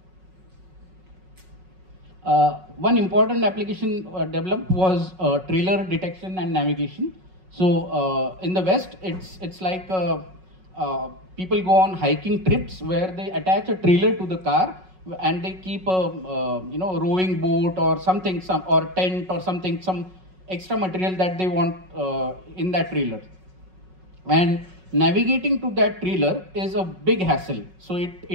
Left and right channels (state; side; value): late; left; 5.4 ms